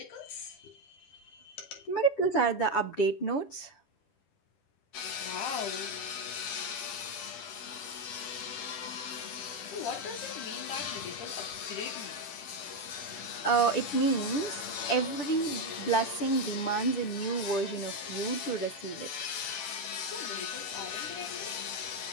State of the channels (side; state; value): right; late; 10 ms